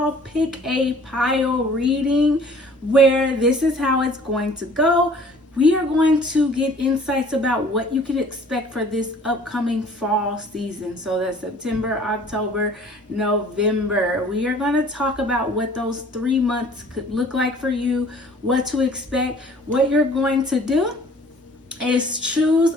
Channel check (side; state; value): both; normal; correlation 0.52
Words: pick a pile reading where this is how it's going to go. We are going to get insights about what you can expect for this upcoming fall season. So that's September, October, November. We are going to talk about what those 3 months could look like for you, what to expect. What you're going to do is choose